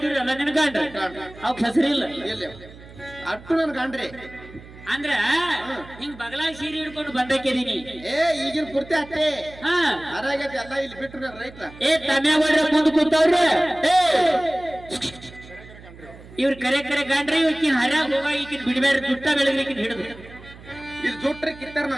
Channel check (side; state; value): right; noise; hum, 19 dB below the sound